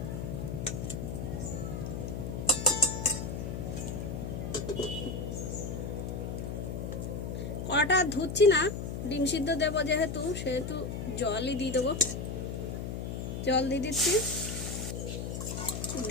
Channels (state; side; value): noise; left; hum, 4 dB below the sound